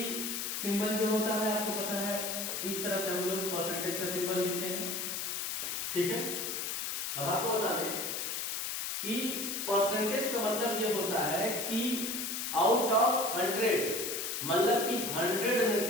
सिंबल जो होता है आपको पता है, इस तरह से हम लोग परसेंटेज का सिंबल लिखते हैं। ठीक है, अब आपको बता दें कि परसेंटेज का मतलब ये होता है कि आउट ऑफ 100, मतलब कि 100 में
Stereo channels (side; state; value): left; noise; hiss, 2 dB below the sound